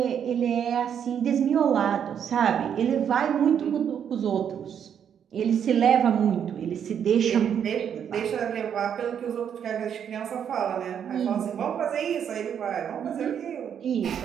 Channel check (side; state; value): left; quieter; 8.4 dB